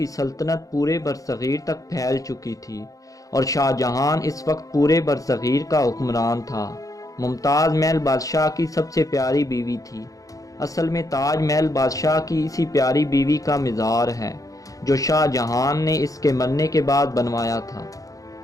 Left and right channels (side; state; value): right; late; 0.17 ms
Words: سلطنت پورے برصغیر تک پھیل چکی تھی، اور شاہ جہان اس وقت پورے برصغیر کا حکمران تھا۔ ممتاز محل بادشاہ کی سب سے پیاری بیوی تھی۔ اصل میں تاج محل بادشاہ کی اسی پیاری بیوی کا مزار ہے جو شاہ جہان نے اس کے مرنے کے بعد بنوایا تھا۔